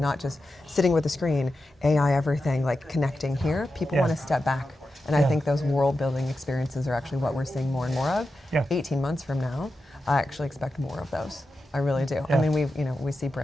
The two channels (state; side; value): normal; both; correlation 0.90